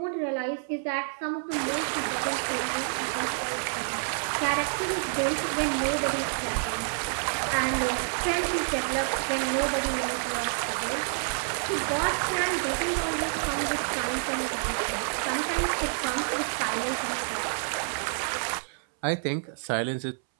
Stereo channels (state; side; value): silent; left; 59 dB below the other